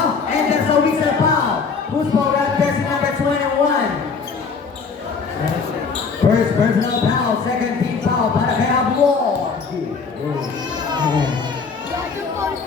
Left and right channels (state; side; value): quieter; right; 5.2 dB